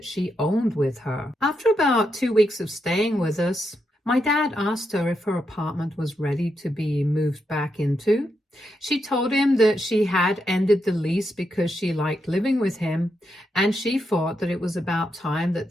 she owned with her. After about 2 weeks of staying with us, my dad asked her if her apartment was ready to be moved back into. She told him that she had ended the lease because she liked living with him, and she thought that it was about time that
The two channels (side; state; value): both; normal; correlation 0.82